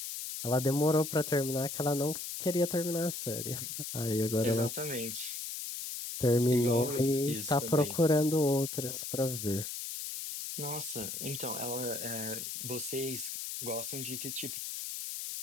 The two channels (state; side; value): noise; left; hiss, 6 dB below the sound